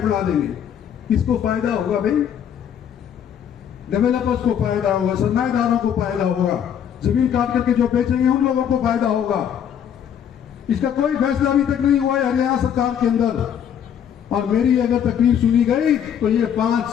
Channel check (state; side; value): quieter; right; 8.9 dB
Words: बना देंगे। किसको फायदा होगा भाई? डेवलपर्स को फायदा होगा, सरमाएदारों को फायदा होगा, जमीन काट करके जो बेचेंगे उन लोगों को फायदा होगा। इसका कोई फैसला अभी तक नहीं हुआ है हरियाणा सरकार के अंदर। और मेरी अगर तकलीफ सुनी गई तो ये 5